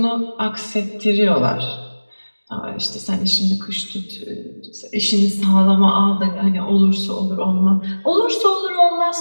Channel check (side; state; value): both; inverted; correlation -1.00